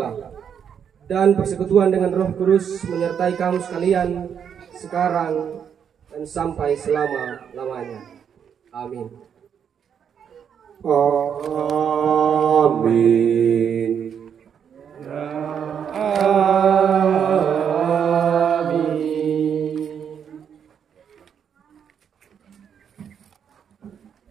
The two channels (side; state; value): left; quieter; 7.9 dB